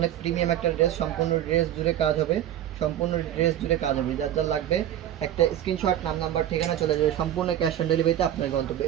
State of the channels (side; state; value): left; quieter; 11.5 dB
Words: প্রিমিয়াম একটা ড্রেস। সম্পূর্ণ ড্রেস জুড়ে কাজ হবে, সম্পূর্ণ ড্রেস জুড়ে কাজ হবে। যার যার লাগবে একটা স্ক্রিনশট, নাম নাম্বার ঠিকানা চলে যাবে। সম্পূর্ণ ক্যাশ অন ডেলিভারিতে আপনার গন্তব্য।